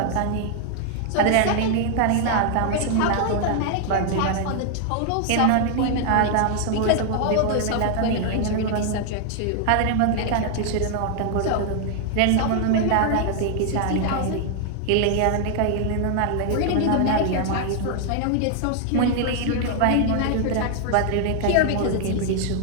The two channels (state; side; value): different; both; correlation 0.00